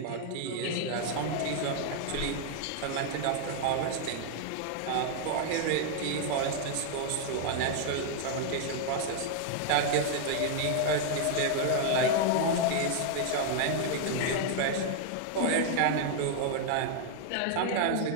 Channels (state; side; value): different; both; correlation 0.00